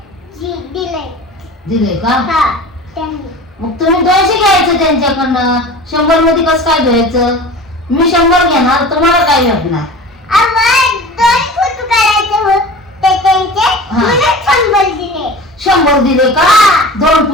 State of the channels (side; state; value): both; normal; correlation 0.37